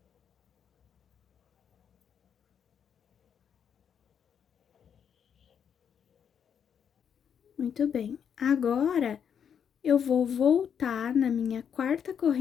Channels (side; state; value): right; quieter; 7.9 dB